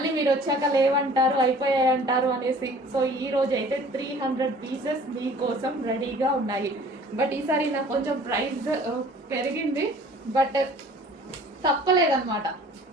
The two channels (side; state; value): both; normal; correlation 0.50